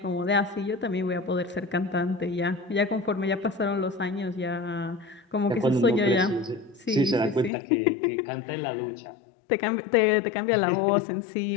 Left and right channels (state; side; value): drops out; right; at 7.5 s